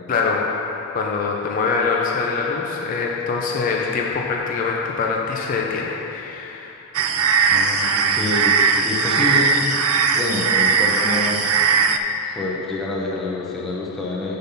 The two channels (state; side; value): normal; both; correlation -0.05